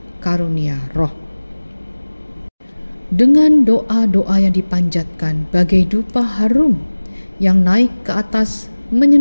karunia roh. Dengan doa-doa yang dipanjatkan bagai dupa harum yang naik ke atas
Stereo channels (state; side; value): inverted; both; correlation -1.00